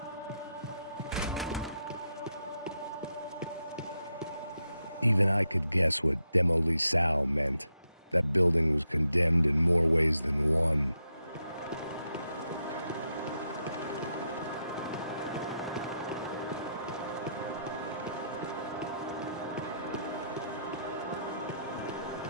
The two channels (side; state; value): both; inverted; correlation -0.81